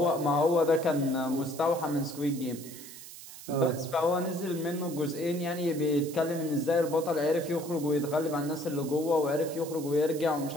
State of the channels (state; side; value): noise; right; hiss, 15 dB below the sound